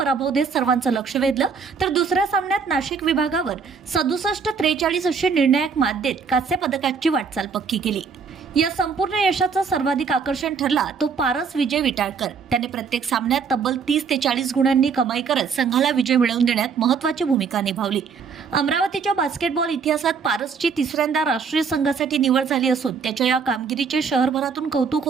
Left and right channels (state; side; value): quieter; left; 5.7 dB